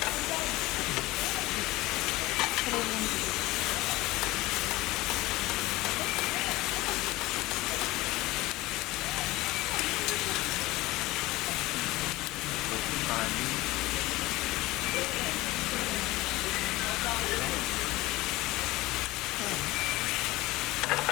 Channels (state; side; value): quieter; right; 19.4 dB